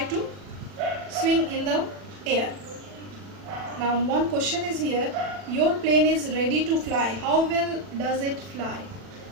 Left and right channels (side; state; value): left; late; 40 ms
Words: to swing in the air. Now one question is here, your plane is ready to fly. How well does it fly?